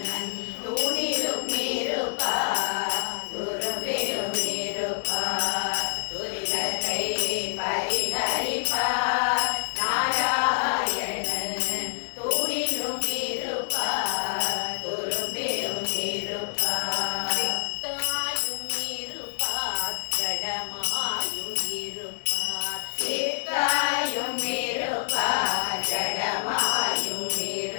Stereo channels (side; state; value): right; silent; 60 dB below the other